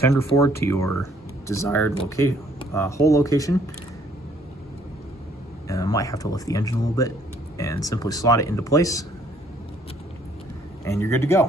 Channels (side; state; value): both; normal; correlation 0.63